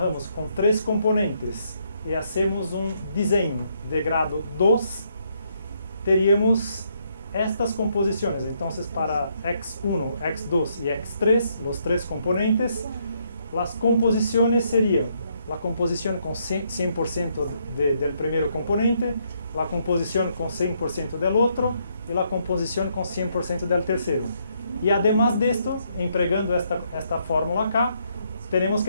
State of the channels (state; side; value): inverted; both; correlation -0.73